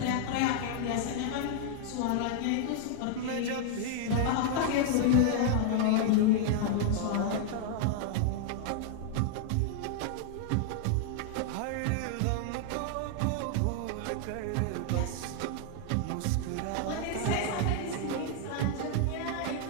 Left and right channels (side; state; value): both; different; correlation 0.00